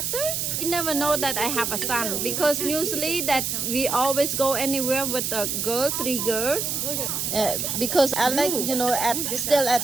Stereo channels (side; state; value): right; noise; hiss, 1 dB below the sound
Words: you never know that I have a son because usually that we always go anywhere with a girl 3 girls because I like you know still at